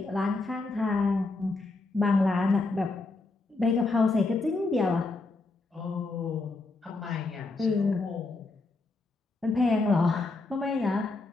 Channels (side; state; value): right; quieter; 3.5 dB